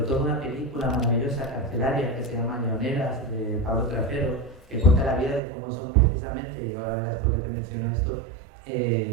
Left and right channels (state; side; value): drops out; left; at 5.4 s